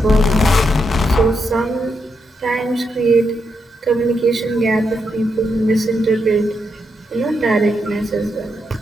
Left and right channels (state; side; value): normal; both; correlation 0.82